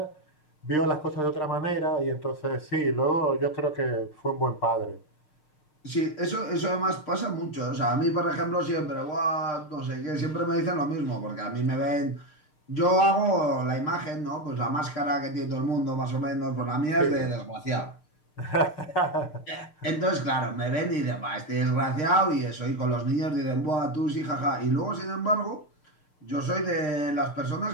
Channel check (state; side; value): late; right; 6.6 ms